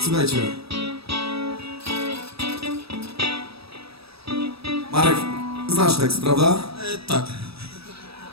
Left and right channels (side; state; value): left; late; 0.77 ms